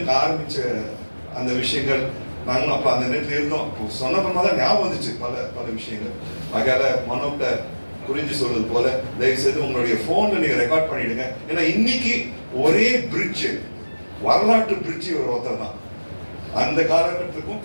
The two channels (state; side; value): inverted; both; correlation -1.00